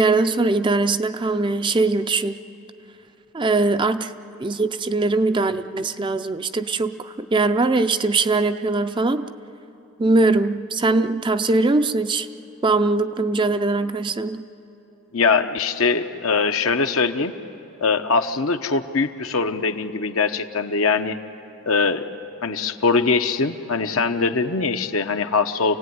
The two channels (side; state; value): both; normal; correlation 0.31